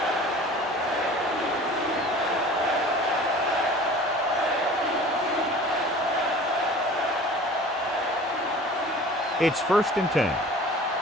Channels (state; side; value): normal; both; correlation 0.43